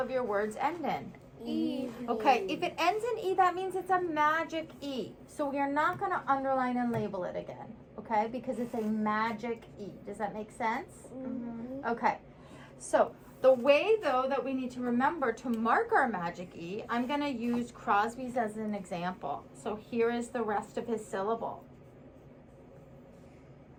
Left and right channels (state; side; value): identical; both; correlation 1.00